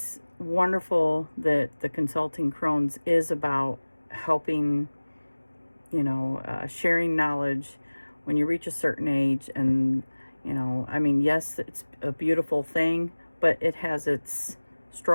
wonderful that the Consulting Crones is about helping, sharing knowledge when you reach a certain age. And, yes, it's a beautiful thing, but it has its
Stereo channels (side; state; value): both; inverted; correlation -1.00